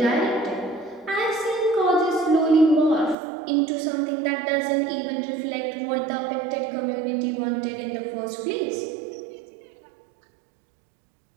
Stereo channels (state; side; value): drops out; left; at 3.2 s